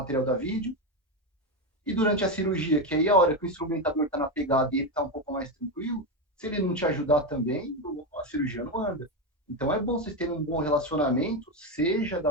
da vídeo. E durante a cirurgia, que aí é a hora que o instrumentador está na pegada e ele está um pouco mais tranquilo, se ele não te ajudar também, a cirurgia não anda. Então é bom vocês terem um bom relacionamento, seja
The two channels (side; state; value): both; normal; correlation 0.11